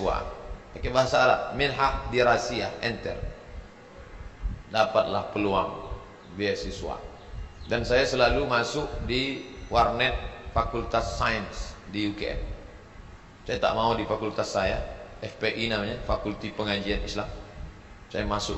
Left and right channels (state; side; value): identical; both; correlation 1.00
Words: Pakai bahasa Arab, minhah dirasiyah, enter. Dapatlah peluang beasiswa. Dan saya selalu masuk di warnet Fakultas Sains di UKM. Saya tak mau di fakultas saya, FPI namanya, Fakulti Pengajian Islam. Saya